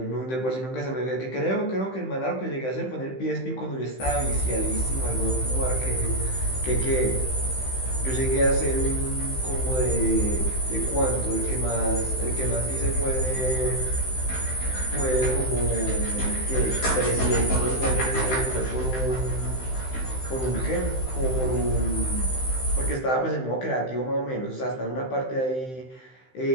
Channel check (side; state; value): right; late; 15 ms